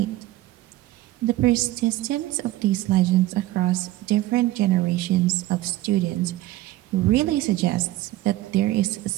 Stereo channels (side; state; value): left; quieter; 16.5 dB